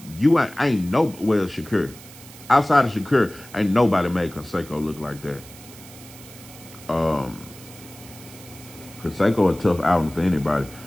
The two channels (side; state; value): right; noise; hiss, 19 dB below the sound